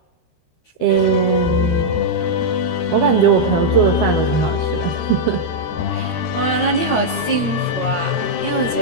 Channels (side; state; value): right; late; 13 ms